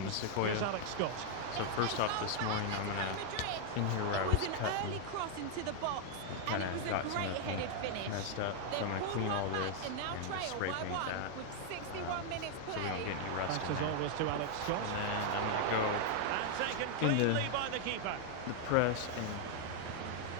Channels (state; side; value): different; both; correlation 0.00